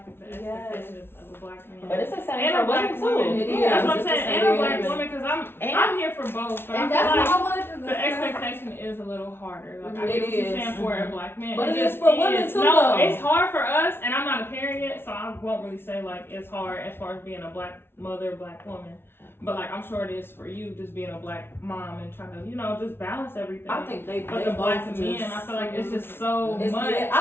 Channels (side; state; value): right; late; 0.11 ms